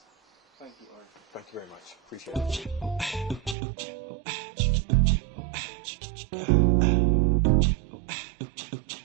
Thank you, Orin. Thank you very much. Appreciate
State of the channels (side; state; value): left; drops out; at 3.6 s